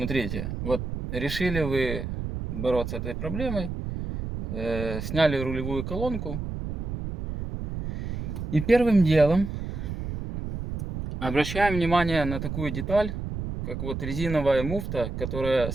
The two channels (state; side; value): noise; right; rumble, 5 dB below the sound